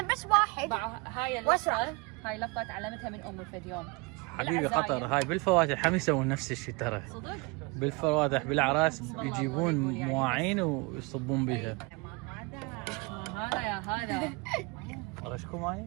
بس واحد هاي اللفظه هاي لفظه تعلمتها من امي في اليوم. حبيبي قطر هاي بالفواتح هم يسوون نفس الشيء ترى. صدق؟ بالفواتح بالاعراس يجيبون مواعين ويصبون بها. هذا يا هذا غشكم معي؟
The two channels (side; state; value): left; quieter; 28.0 dB